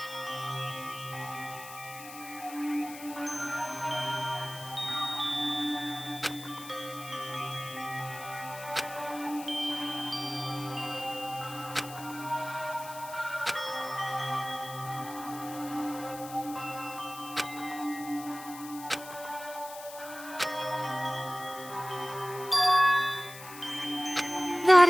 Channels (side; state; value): left; noise; hiss, 14 dB below the sound